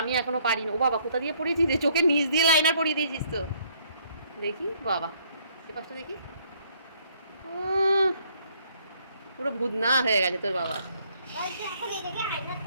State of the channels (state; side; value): inverted; both; correlation -0.65